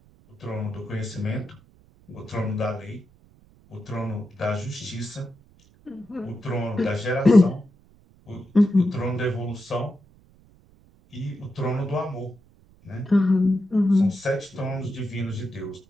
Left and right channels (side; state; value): right; noise; rumble, 28 dB below the sound